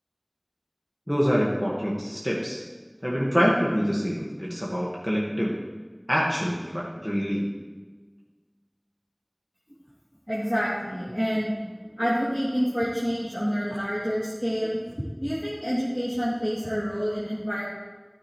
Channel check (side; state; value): both; identical; correlation 1.00